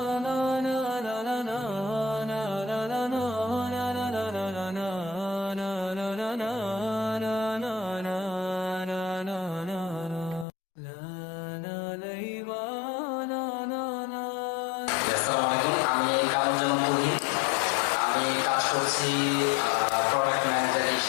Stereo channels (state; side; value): drops out; right; at 10.5 s